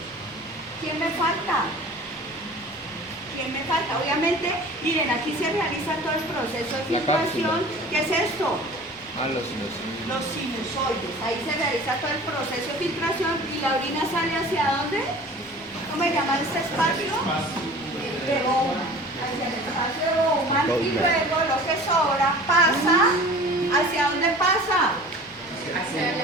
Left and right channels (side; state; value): both; normal; correlation 0.42